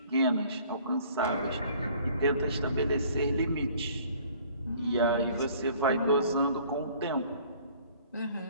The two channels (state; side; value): inverted; both; correlation -0.54